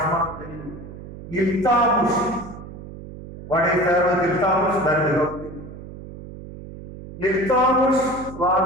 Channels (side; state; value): right; noise; hum, 14 dB below the sound